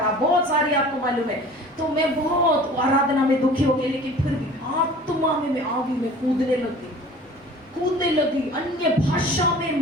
बहुत सारी, आपको मालूम है। तो मैं बहुत आराधना में दुखी हो गई, लेकिन फिर भी आत्मा में मैं आ गई, मैं कूदने लगी। अन्य भाषा में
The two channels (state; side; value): normal; both; correlation 0.44